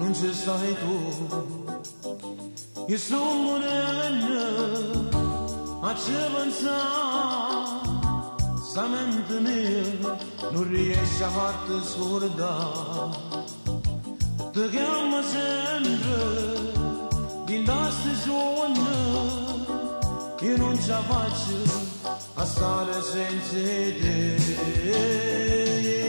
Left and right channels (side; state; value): both; inverted; correlation -1.00